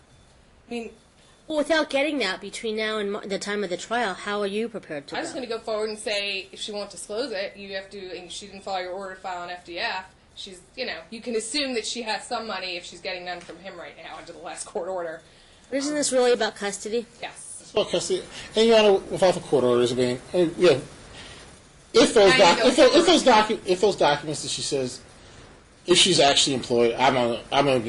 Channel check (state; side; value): identical; both; correlation 1.00